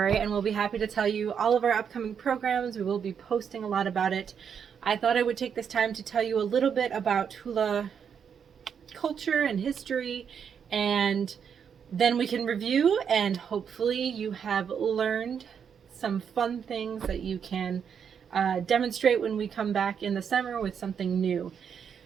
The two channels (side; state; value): left; quieter; 7.4 dB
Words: and we'll be happy to tell you all of our upcoming programs. We will be posting a lot about it. I thought I would take this time to tell you a little bit about hula culture and history, and then we can review, and hopefully you have learned some fun things that you can demonstrate when we come back in the summer with something new.